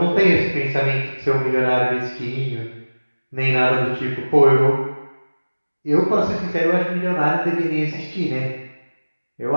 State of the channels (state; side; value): inverted; both; correlation -1.00